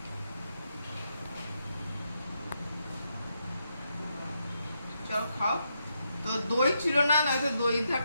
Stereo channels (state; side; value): inverted; both; correlation -0.81